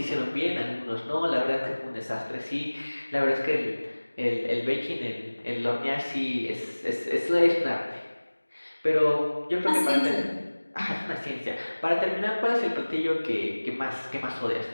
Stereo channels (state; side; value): inverted; both; correlation -1.00